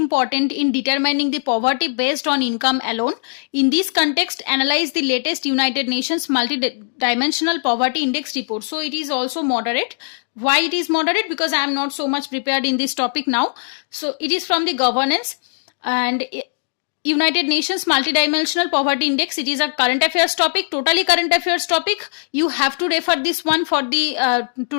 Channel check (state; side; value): silent; right; digital silence